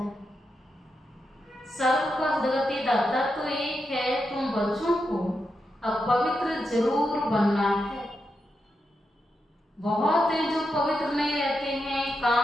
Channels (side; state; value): both; normal; correlation 0.86